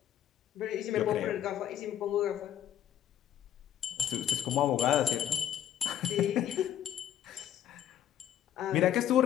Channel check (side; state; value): right; quieter; 10.6 dB